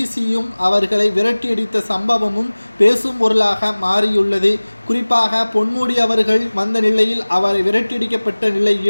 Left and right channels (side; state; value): both; inverted; correlation -1.00